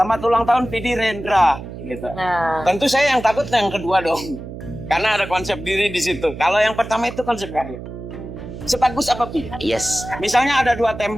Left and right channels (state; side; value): noise; right; hum, 11 dB below the sound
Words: ulang tahun Pidi Rendra, gitu. Nah, Tentu saya yang takut yang kedua dong, karena ada konsep diri di situ. Kalau yang pertama itu konsep karya. Sebagus apa Pi? Yes. Misalnya ada dua